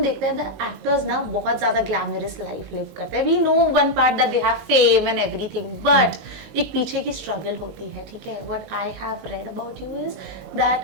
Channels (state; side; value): late; left; 21 ms